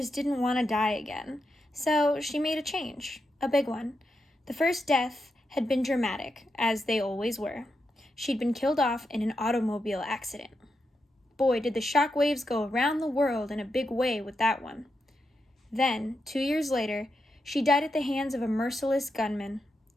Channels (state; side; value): normal; both; correlation 0.85